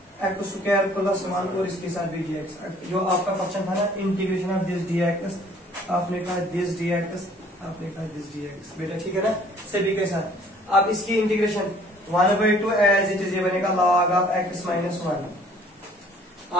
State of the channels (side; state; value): both; normal; correlation 0.56